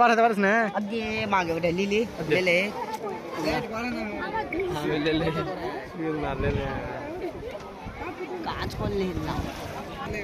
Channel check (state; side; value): identical; both; correlation 1.00